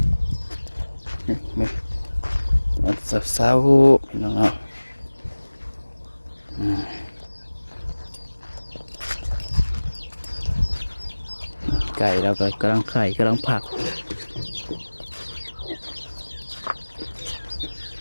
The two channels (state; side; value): inverted; both; correlation -1.00